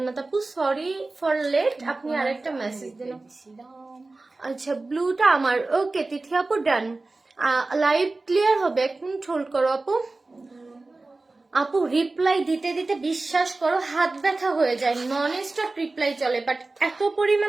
আপু, সরি ফর লেট, আপনি আরেকটা মেসেজ দিন। আচ্ছা, ব্লুটা আমার। ওকে তিথি আপু, ডান। লাইভ ক্লিয়ার হবে, 1 মিনিট হোল্ড করো আপু। আপু রিপ্লাই দিতে দিতে বিশ্বাস করো হাত ব্যথা হয়ে যায়, নন স্টপ রিপ্লাই চলে, বাট এত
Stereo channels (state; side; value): quieter; left; 3.3 dB